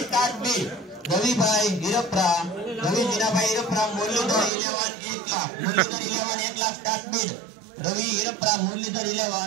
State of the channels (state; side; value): drops out; left; at 4.5 s